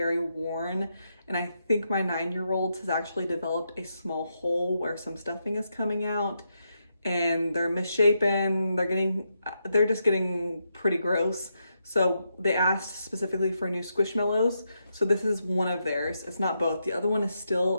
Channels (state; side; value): inverted; both; correlation -0.82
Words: worn. And I think my 9-year-old has actually developed a small hole where some stuffing is coming out, and they're misshapen. They're just getting pretty gross. So they asked specifically for new Squishmallows. So this is one of theirs. It's not both. The other one is